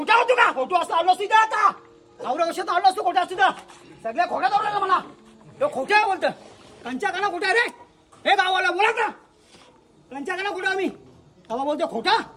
होतो का खोटो असतो आलो असतो इथं आता एवढ्या वर्षात आलो असतो खोटा असतो सगळ्या खोट्या दौडला मला तो खोट्या बोलतं कंच्या काना खोटा रे हे गावाला बोला ना कंच्या काना खोटा आम्ही तेव्हा बोलतो खोटा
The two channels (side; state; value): both; identical; correlation 1.00